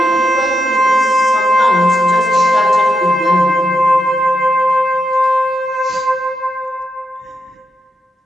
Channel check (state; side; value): normal; both; correlation 0.83